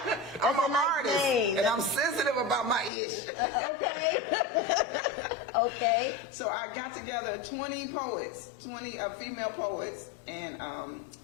I'm an artist, and I'm sensitive about my ish. Okay. So I got together 20 poets, 20 female poets, and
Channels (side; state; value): right; drops out; at 2.9 s